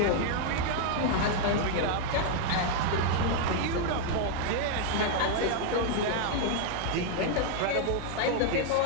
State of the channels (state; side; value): different; both; correlation 0.00